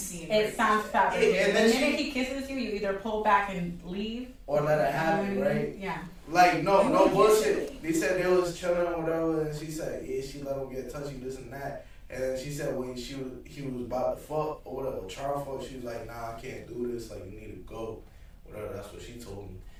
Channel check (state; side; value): identical; both; correlation 1.00